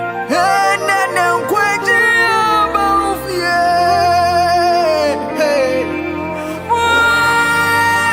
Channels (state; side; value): identical; both; correlation 1.00